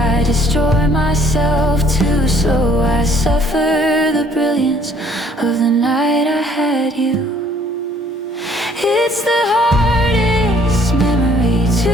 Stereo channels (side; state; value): both; normal; correlation 0.60